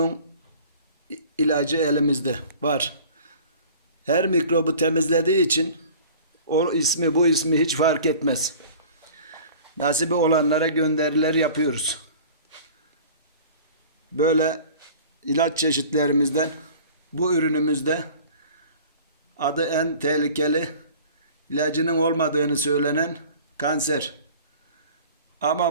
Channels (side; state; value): both; inverted; correlation -0.45